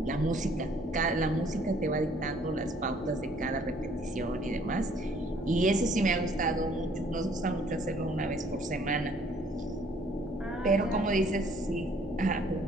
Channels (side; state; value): both; normal; correlation 0.60